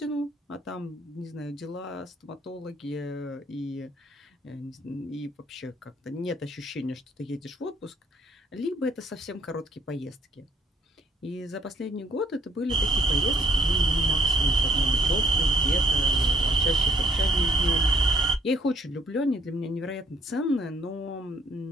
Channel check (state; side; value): normal; both; correlation 0.64